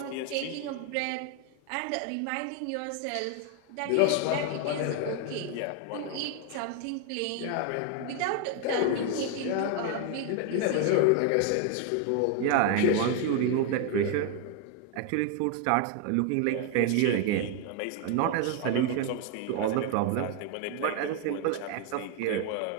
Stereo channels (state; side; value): different; both; correlation 0.01